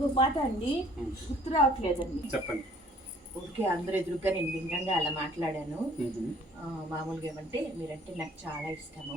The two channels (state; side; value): normal; both; correlation 0.57